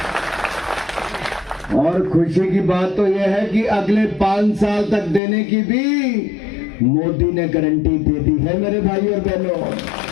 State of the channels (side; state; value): right; drops out; at 5.2 s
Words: और खुशी की बात तो यह है कि अगले 5 साल तक देने की भी मोदी ने गारंटी दे दी है मेरे भाई और बहनों।